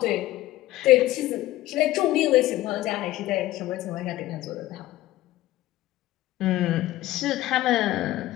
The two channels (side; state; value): right; quieter; 16.1 dB